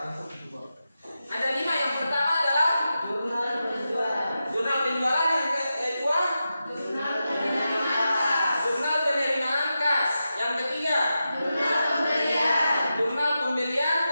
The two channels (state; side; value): inverted; both; correlation -0.90